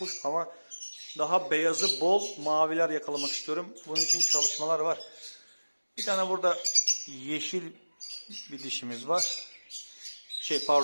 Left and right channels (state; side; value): inverted; both; correlation -1.00